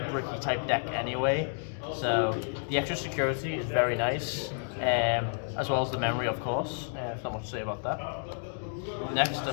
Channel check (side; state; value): right; silent; digital silence